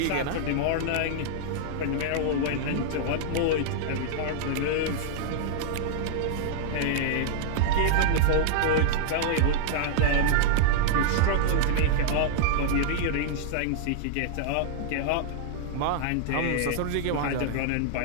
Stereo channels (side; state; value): both; different; correlation -0.01